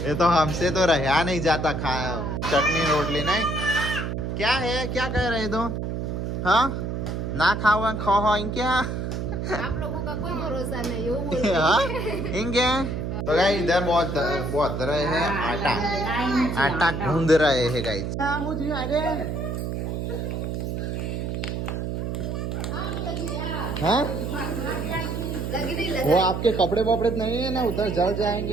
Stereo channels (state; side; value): noise; right; hum, 3 dB below the sound